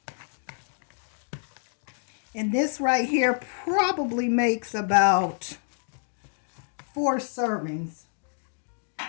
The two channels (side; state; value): right; silent; 59 dB below the other